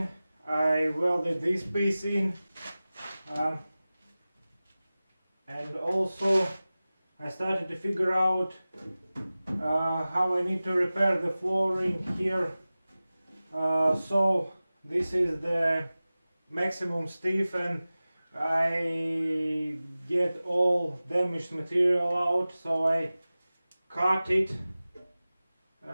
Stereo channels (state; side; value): inverted; both; correlation -0.97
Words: I welded this piece in, and also I started to figure out how I need to repair the flooring here. So this is the maximum stiff, and I get all damaged material out, so I cut it.